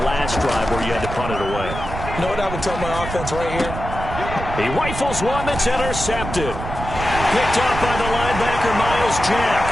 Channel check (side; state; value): right; noise; rumble, 7 dB below the sound